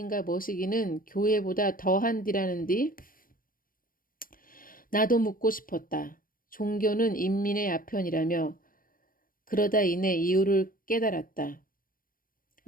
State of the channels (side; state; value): right; late; 0.41 ms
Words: 뭐시기는 교회보다 더한디라는디. 나도 묻고 싶었다. 종교는 인민의 아편이라며 그러다 이내 이유를 깨달았다.